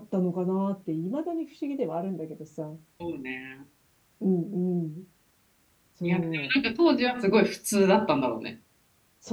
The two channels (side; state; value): both; identical; correlation 1.00